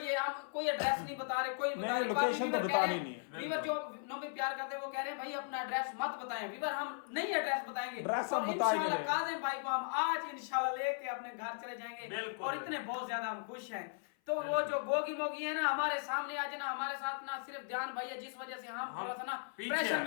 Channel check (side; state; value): right; silent; 53 dB below the other